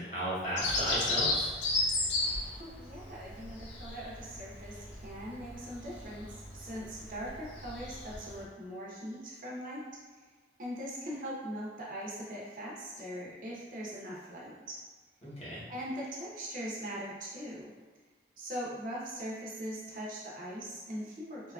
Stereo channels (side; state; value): both; normal; correlation 0.22